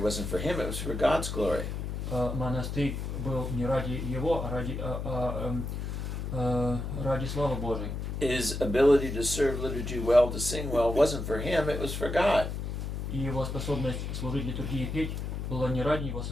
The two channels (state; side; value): noise; left; hum, 4 dB below the sound